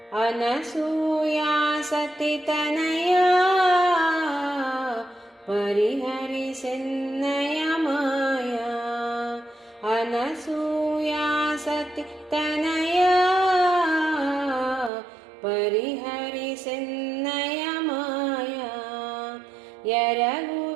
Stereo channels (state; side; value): drops out; left; at 14.9 s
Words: अनसूया सती तनया परिहरि सिन्नय माया अनसूया सती तनया परिहरि सिन्नय माया